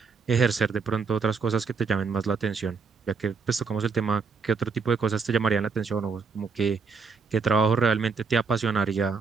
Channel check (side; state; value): left; quieter; 5.1 dB